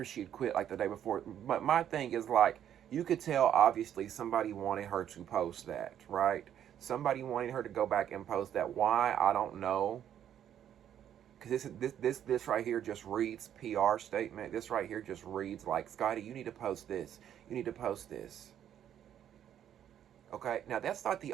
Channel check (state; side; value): quieter; left; 10.1 dB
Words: she'd quit, like the day before. But my thing is, like, you could tell, obviously, somebody wanted her to post that, right? Somebody wanted her to go back and post that. Why? I don't know. Because this right here just reads PR statement. This right here just reads like, Scotty, you need to post this. You need to post this. Okay? Now, that's not the